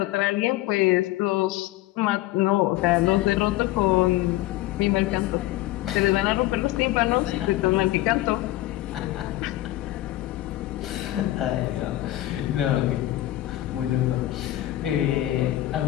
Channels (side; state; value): right; quieter; 15.9 dB